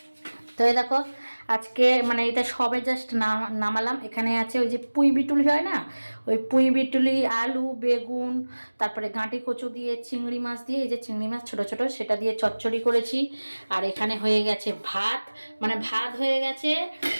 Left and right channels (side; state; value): both; inverted; correlation -1.00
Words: তো এই দেখো আজকে মানে এটা সবে জাস্ট নামালাম। এখানে আছে ওই যে পুঁই বিটুলি হয় না, ওই পুঁই বিটুলি, আলু, বেগুন, তারপরে গাঁটি কচু দিয়ে চিংড়ি মাছ দিয়ে, এই যে চিংড়ি মাছ ছোটো ছোটো, সেটা দিয়ে চচ্চড়ি করেছি। আর এখানে হয়ে গেছে ভাত, মানে ভাত হয়ে গেছে,